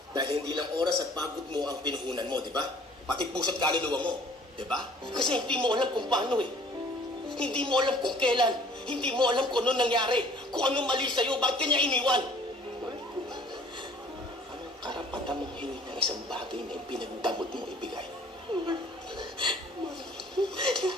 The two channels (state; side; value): normal; both; correlation 0.53